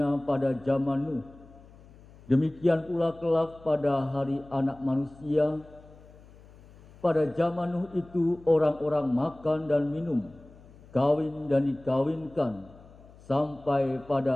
pada zaman Nuh, demikian pula kelak pada hari Anak Manusia. Pada zaman Nuh itu orang-orang makan dan minum, kawin dan dikawinkan, sampai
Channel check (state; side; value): noise; left; hum, 23 dB below the sound